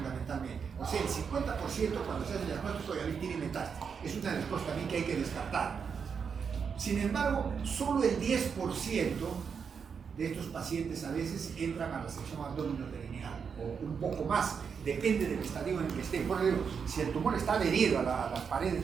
O sea, el 50% cuando se hace el diagnóstico ya tiene metástasis. Es una de las cosas también que hay que descartar. Sin embargo, solo el 10% de estos pacientes a veces entran a la resección abdominoperineal, o un poco más, depende del estadio en el que esté. Por ejemplo, si el tumor está adherido a las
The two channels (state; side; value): quieter; left; 6.4 dB